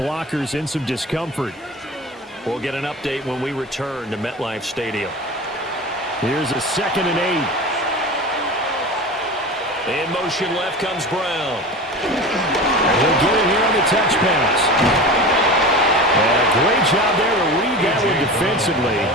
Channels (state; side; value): normal; both; correlation 0.31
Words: in some discomfort. We'll get an update when we return to MetLife Stadium. Here's a 2nd and 8. In motion left comes Brown. He'll get it here on the touch pass. And a great job there to read that one defensively.